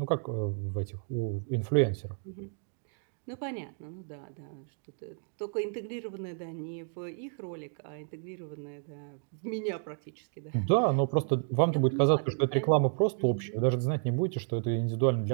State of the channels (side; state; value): left; silent; 57 dB below the other